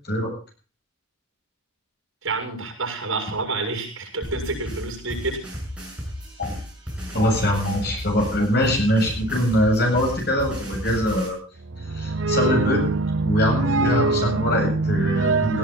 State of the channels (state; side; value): normal; both; correlation 0.41